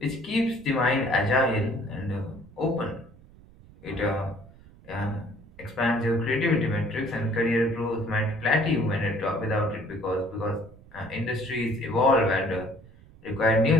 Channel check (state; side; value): noise; right; rumble, 23 dB below the sound